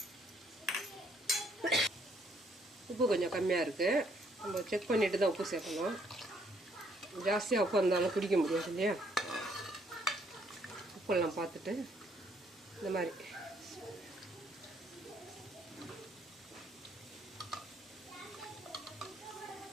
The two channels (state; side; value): normal; both; correlation 0.68